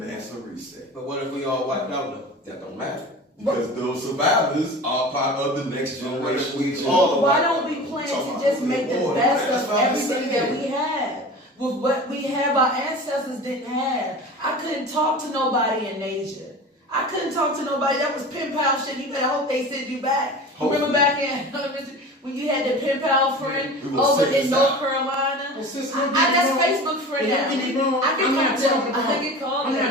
reset. But what if we all wiped out though? That don't matter. Because those survivors are part of the next generation. We all- Why don't we plan to just make the best of everything that we have? With what we have, our ancestors didn't have. I couldn't talk to nobody in Asia. I couldn't talk to nobody. That was pen pal shit. You better hope they send you back. Remember back in when you had the pen pal friend we will over send in this North out. Carolina? Well, sis, That's Facebook friend Hey, now. don't get me wrong. I I'm can not call talking them. I about. can call I'm them.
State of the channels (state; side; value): normal; both; correlation 0.35